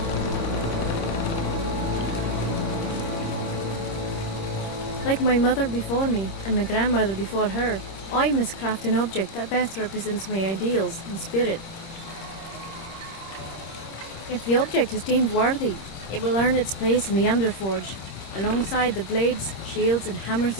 Like my mother before me, and my grandmother before her, I must craft an object that best represents my ideals and spirit. If the object is deemed worthy, it will earn its place in the Underforge, alongside the blades, shields and hammers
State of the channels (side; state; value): right; late; 26 ms